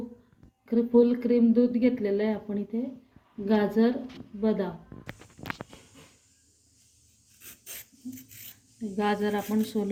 फुल क्रीम दूध घेतलेलं आहे आपण इथे, गाजर, बदाम. गाजर आपण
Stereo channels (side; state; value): both; identical; correlation 1.00